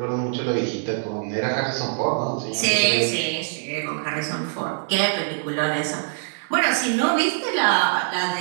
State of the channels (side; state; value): left; silent; 63 dB below the other